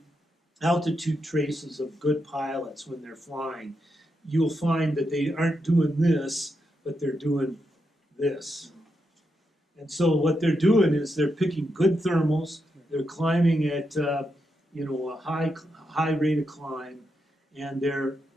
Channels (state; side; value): normal; both; correlation 0.84